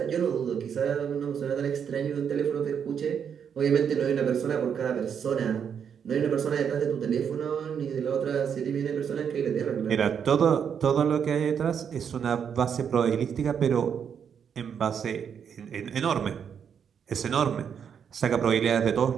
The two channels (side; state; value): left; quieter; 7.6 dB